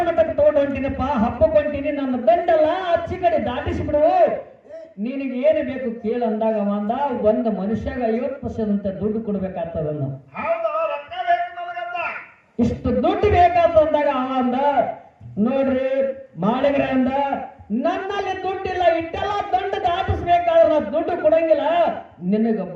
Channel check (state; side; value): identical; both; correlation 1.00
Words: ಮಠಕ್ಕೆ ತಗೊಂಡು ಹೊಂಟಿನಪ್ಪ ಹಬ್ಬಕ್ಕೆ ಹೊಂಟೀನಿ ನನ್ನ ದಂಡಲ್ಲ ಅಚ್ಚಿ ಕಡೆ ದಾಟಿಸಿಬಿಡು ನಿನಗೆ ಏನು ಬೇಕು ಕೇಳು ಅಂದಾಗ ಅಂದ ಒಂದು ಮನುಷ್ಯಾಗ 50% ದುಡ್ಡು ಕೊಡ್ಬೇಕಾಗ್ತದನ್ನ ಹೌದು ರೊಕ್ಕ ಬೇಕು ನನಗಂತ ಇಷ್ಟು ದುಡ್ಡು ಬೇಕಾದ ಅಂದಾಗ ಅವ ಅಂದ ನೋಡ್ರಿ ಮಾಳಿಗರ ಅಂದ ನನ್ನಲ್ಲಿ ದುಡ್ಡಿಲ್ಲ ಇಟ್ಟೆಲ್ಲ ದಂಡ ದಾಟಿಸ್ಬೇಕಾದ್ರೆ ನಾ ದುಡ್ಡು ಕೊಡಂಗಿಲ್ಲ ನಿನಗ